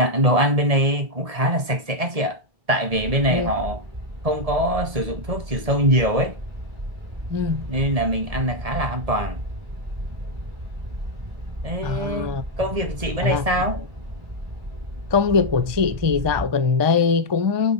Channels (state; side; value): late; left; 1.7 ms